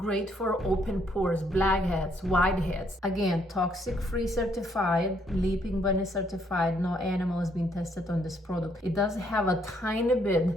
for open pores, blackheads, whiteheads. Again, toxic free certified, Leaping Bunny certified. No animal has been tested on this product. It does have a tiny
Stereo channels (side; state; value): both; normal; correlation 0.70